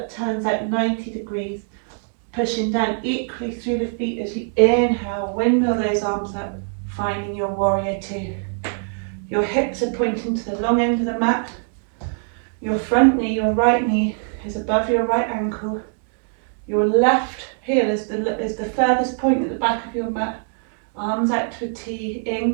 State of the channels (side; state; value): left; silent; 60 dB below the other